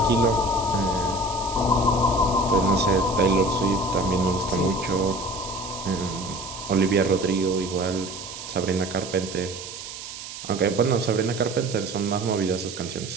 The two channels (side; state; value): right; noise; hiss, 11 dB below the sound